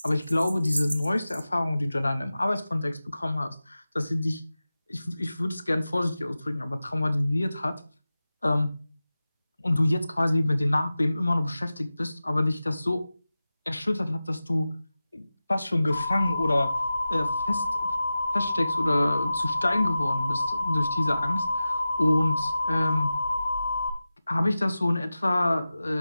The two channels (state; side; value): inverted; both; correlation -0.95